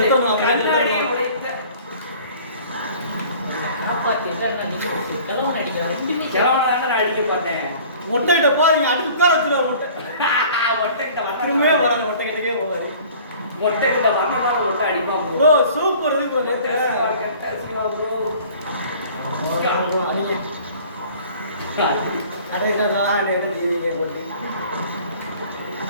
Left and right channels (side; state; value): both; inverted; correlation -0.49